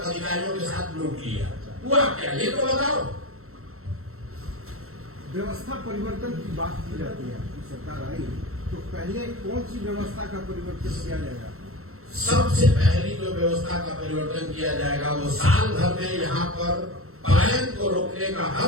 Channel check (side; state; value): left; late; 0.63 ms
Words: अधिकारियों के साथ लूट लिया, हुआ क्या, ये तो बताओ। व्यवस्था परिवर्तन की बात की जाती है, आपकी सरकार आई तो पहले कौन सी व्यवस्था का परिवर्तन किया जाएगा? सबसे पहली जो व्यवस्था का परिवर्तन किया जाएगा वो साल भर में यहाँ पर पलायन को रोकने का